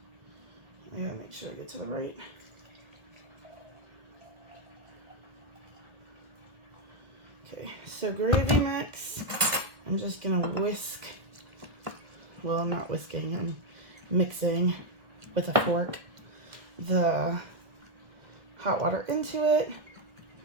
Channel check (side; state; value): left; late; 1.6 ms